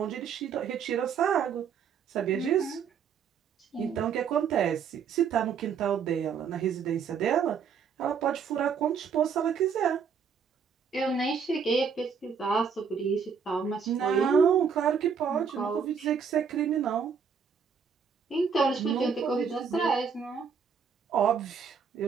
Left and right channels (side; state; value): left; quieter; 6.5 dB